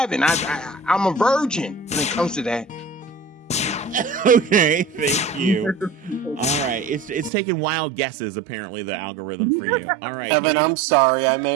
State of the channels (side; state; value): left; drops out; at 7.3 s